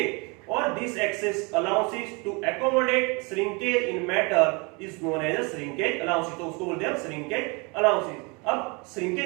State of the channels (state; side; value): quieter; left; 29.8 dB